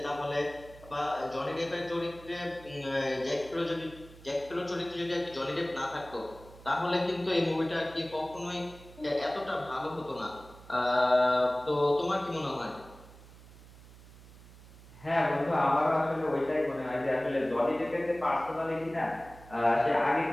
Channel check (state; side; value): noise; right; hum, 20 dB below the sound